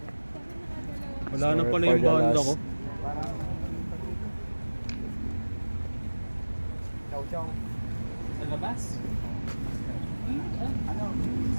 Wala na Sorry pala for yung the banda loss. ko. Chow. Sa labas? Ano?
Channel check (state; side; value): inverted; both; correlation -1.00